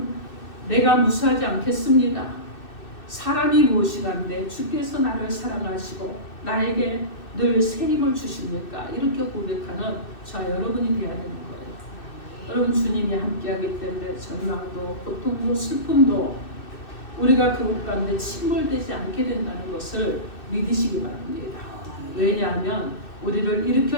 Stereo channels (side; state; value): right; late; 2.6 ms